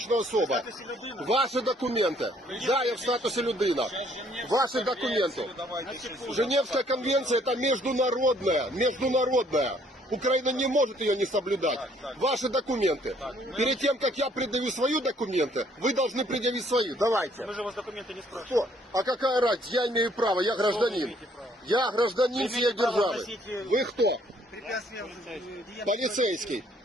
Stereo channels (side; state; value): both; normal; correlation 0.64